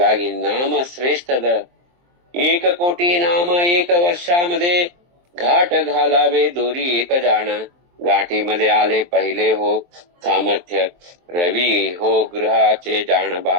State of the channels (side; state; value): left; late; 23 ms